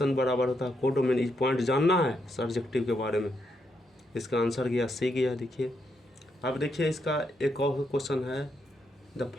बराबर होता है कोडोमेन। इस पॉइंट जानना है सर्जेक्टिव के बारे में। इसका आंसर गया सी गया। देखिए अब देखिए इसका एक और क्वेश्चन है, the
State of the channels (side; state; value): both; normal; correlation 0.79